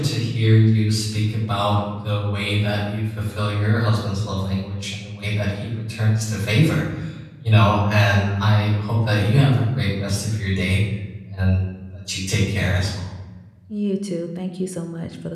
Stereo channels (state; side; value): identical; both; correlation 1.00